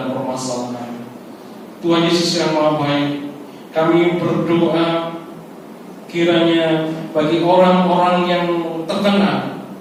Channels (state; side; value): identical; both; correlation 1.00